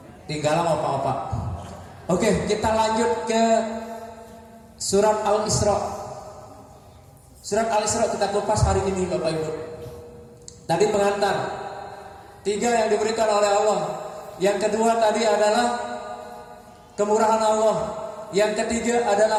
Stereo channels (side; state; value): both; identical; correlation 1.00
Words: Tinggalan apa-apa. Oke, kita lanjut ke surat Al-Isra. Surat Al-Isra kita kupas hari ini Bapak Ibu. Tadi pengantar 3 yang diberikan oleh Allah. Yang kedua tadi adalah kemurahan Allah. Yang ketiga